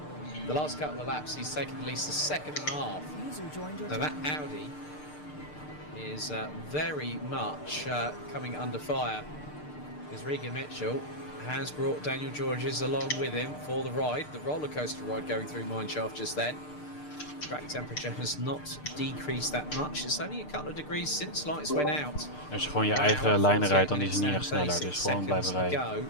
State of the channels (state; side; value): late; right; 6.7 ms